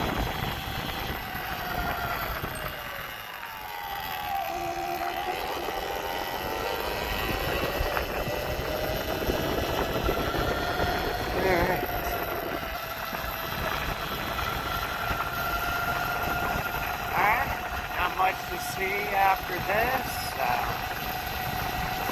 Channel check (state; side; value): identical; both; correlation 1.00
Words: Much to see after this.